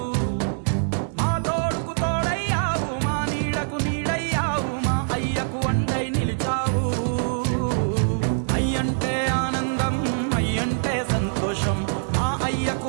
మా తోడుకు తోడయ్యావు, మా నీడకు నీడయ్యావు, మా అయ్యకు వండై నిలిచావు. అయ్యంటే ఆనందం, అయ్యంటే సంతోషం, మా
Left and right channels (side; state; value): left; silent; 63 dB below the other